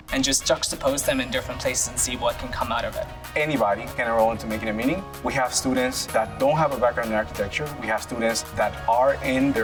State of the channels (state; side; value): identical; both; correlation 1.00